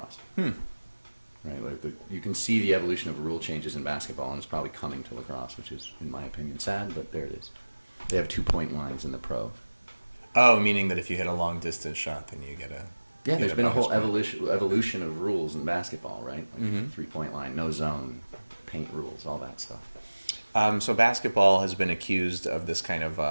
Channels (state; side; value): inverted; both; correlation -1.00